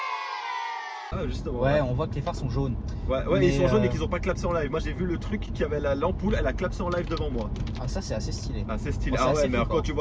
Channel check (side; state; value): both; identical; correlation 1.00